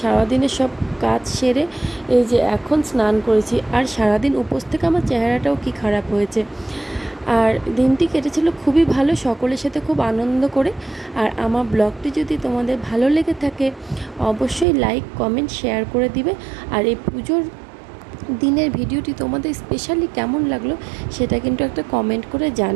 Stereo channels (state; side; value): drops out; left; at 14.7 s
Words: সব কাজ সেরে এই যে এখন স্নান করেছি, আর সারাদিন উপোস থেকে আমার চেহারাটাও কি খারাপ হয়েছে। আর দিনটি কেটেছিল খুবই ভালো, সকলের সাথে খুব আনন্দ করে। আর আমার ব্লগটি যদি তোমাদের ভালো লেগে থাকে অবশ্যই লাইক কমেন্ট শেয়ার করে দিবে। আর এই পুজোর দিনের ভিডিওটি তোমাদের স্পেশালি কেমন লাগলো সেটা কিন্তু একটা কমেন্ট করে